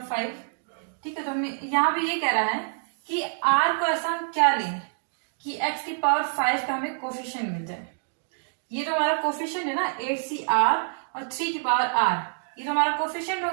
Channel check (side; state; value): left; silent; digital silence